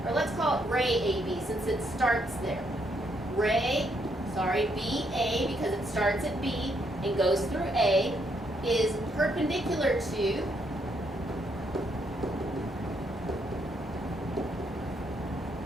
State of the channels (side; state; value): both; normal; correlation 0.74